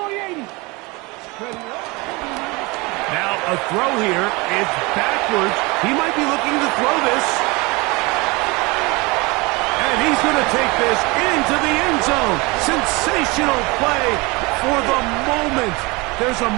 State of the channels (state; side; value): quieter; left; 25.4 dB